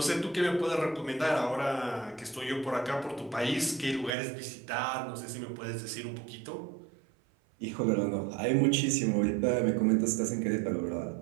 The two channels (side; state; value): left; drops out; at 4.1 s